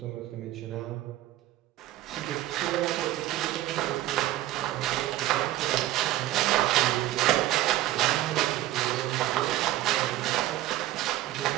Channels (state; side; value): quieter; left; 15.0 dB